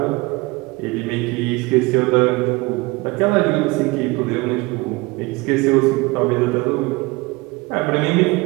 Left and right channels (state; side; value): quieter; left; 23.8 dB